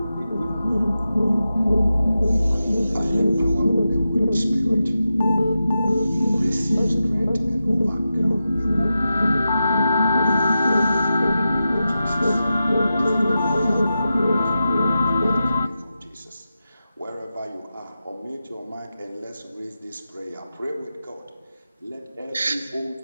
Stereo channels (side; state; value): both; inverted; correlation -0.91